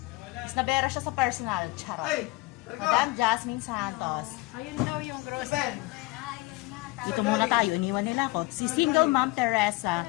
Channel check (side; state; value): right; quieter; 22.3 dB